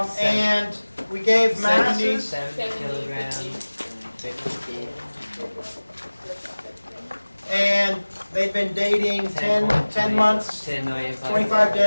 And we gave masses. 70 kilograms. And they've been dating 10 months, 25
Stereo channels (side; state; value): both; inverted; correlation -1.00